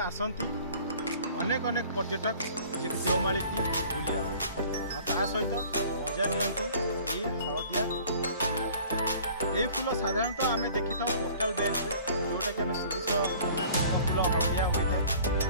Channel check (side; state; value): both; inverted; correlation -0.49